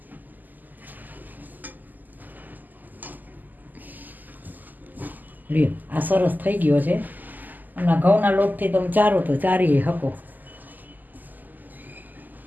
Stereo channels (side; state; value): left; late; 0.085 ms